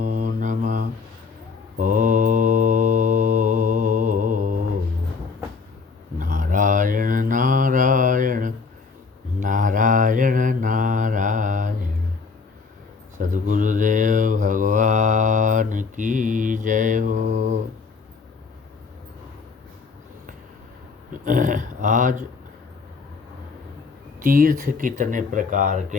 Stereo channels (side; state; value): right; quieter; 5.0 dB